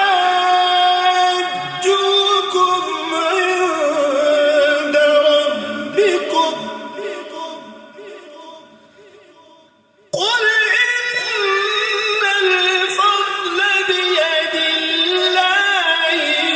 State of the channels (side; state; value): both; identical; correlation 1.00